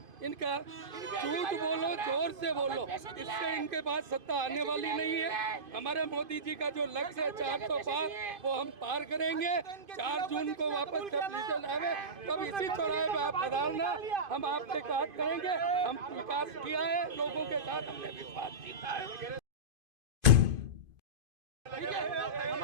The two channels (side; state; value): left; late; 2.5 ms